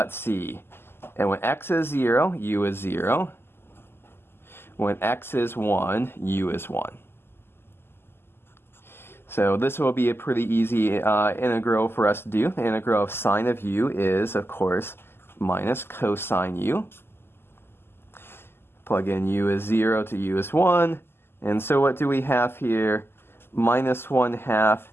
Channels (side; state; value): right; late; 0.11 ms